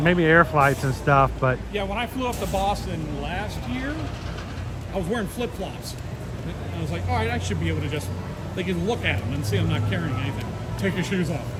air flights and stuff, but Yeah, when I flew up to Boston last year, I was wearing flip-flops. I was like, all right, I should be able to just, they can look at them and see I'm not carrying anything. Take your shoes off,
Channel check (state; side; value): identical; both; correlation 1.00